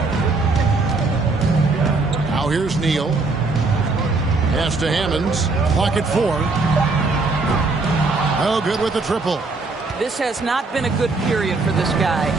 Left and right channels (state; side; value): quieter; left; 3.6 dB